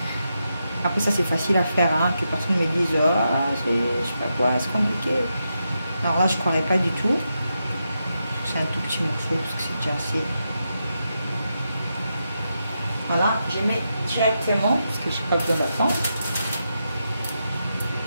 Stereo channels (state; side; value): inverted; both; correlation -0.85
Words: Après ça c'est facile à faire, hein, que personne me dise oh, je sais pas quoi, c'est compliqué. Alors là je croirais pas du tout. C'est un tout petit morceau parce que c'est déjà assez. Voilà, je mets directement parce que je n'ai pas besoin d'attendre.